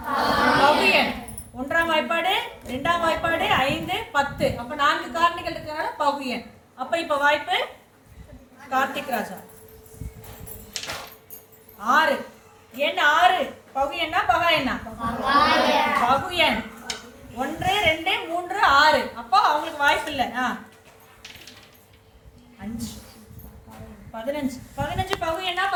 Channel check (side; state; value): both; identical; correlation 1.00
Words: பகு எண். 1ஆம் வாய்ப்பாடு 2ஆம் வாய்ப்பாடு 5 10. அப்ப 4 காரணிகள் இருக்கனால பகு எண். அப்ப இப்ப வாய்ப்பு கார்த்திக் ராஜா. 6. எண் 6 பகு எண்ணா பகா எண்ணா? பகு எண். 1 2 3 6. அப்போ அவங்களுக்கு வாய்ப்பு இல்லை. 5 15. 15 பகு எண்ணா